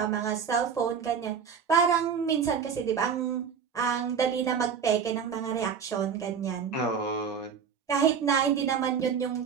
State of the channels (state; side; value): quieter; left; 6.8 dB